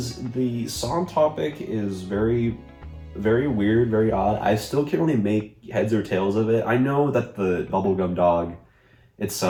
the song topic is very, very weird, very odd. I still can't really make heads or tails of it. I know that the Bubblegum Dog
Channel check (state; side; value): identical; both; correlation 1.00